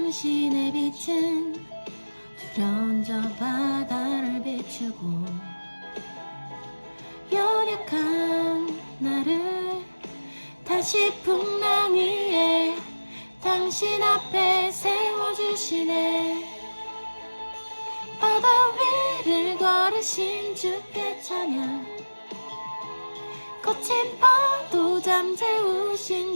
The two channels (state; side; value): inverted; both; correlation -1.00